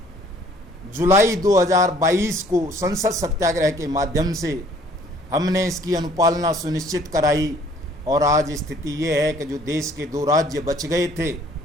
जुलाई 2022 को संसद सत्याग्रह के माध्यम से हमने इसकी अनुपालना सुनिश्चित कराई और आज स्थिति ये है कि जो देश के 2 राज्य बच गए थे,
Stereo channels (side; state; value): both; normal; correlation 0.58